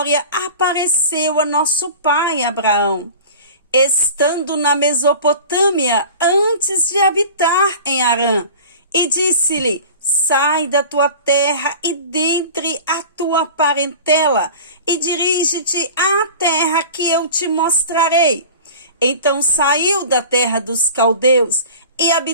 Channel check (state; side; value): inverted; both; correlation -0.38